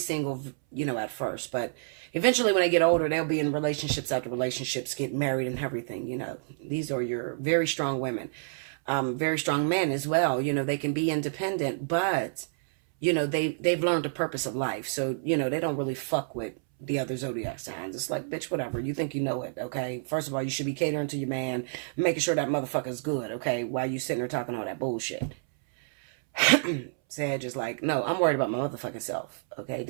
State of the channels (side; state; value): left; silent; 59 dB below the other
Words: you know, at first, but eventually when they get older, they'll be in relationships after relationships, get married and everything, you know. These are your very strong women. Very strong men as well. You know, they can be independent, but, you know, they've learned the purpose of life. So, you know, they don't really fuck with the other zodiac signs. It's like, bitch, whatever. You think you know it, okay? First of all, you should be catering to your man, making sure that motherfucker's good, okay? While you sitting there talking all that bullshit. Sag is like, no, I'm worried about my motherfucking self, okay?